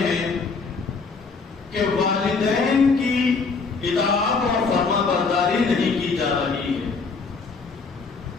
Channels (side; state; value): right; quieter; 4.6 dB